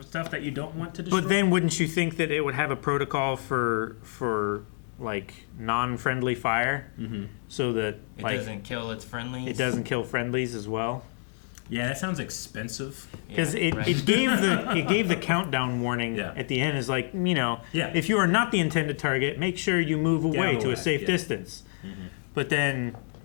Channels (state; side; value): silent; right; 57 dB below the other